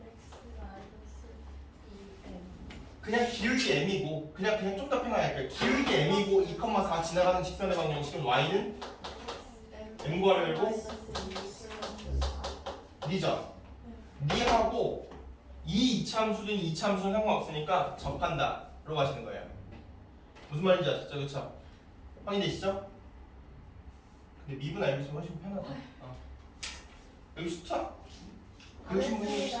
그냥 기울기 m이고 그냥 좀 더 편하게 기울기 m이고 2,4 지나가는 직선의 방정식은 y는 m 구하려고 니죠? 니하고 이 이차함수든 이차함수는 상관없으니까 접한다 로 가시는 거예요. 무슨 말인지 아셨죠? 그쵸? 확인되시죠? 근데 미분 알고 있으면 훨씬 편하다. 여기 숫자? 배우신 분이 혹시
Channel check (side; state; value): both; identical; correlation 1.00